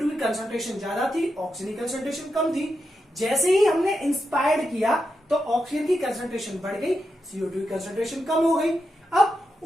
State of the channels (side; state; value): both; normal; correlation 0.86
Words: की कंसंट्रेशन ज्यादा थी, ऑक्सीजन की कंसंट्रेशन कम थी। जैसे ही हमने इंस्पायर्ड किया तो ऑक्सीजन की कंसंट्रेशन बढ़ गई, CO2 की कंसंट्रेशन कम हो गई। अब